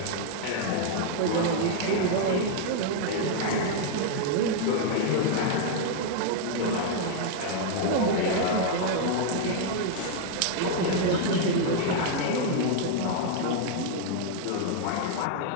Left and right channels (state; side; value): different; both; correlation 0.00